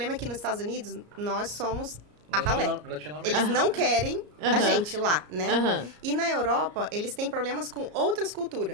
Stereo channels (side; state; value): left; late; 34 ms